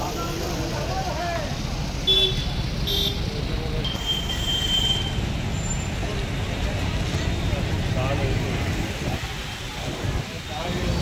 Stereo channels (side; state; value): both; identical; correlation 1.00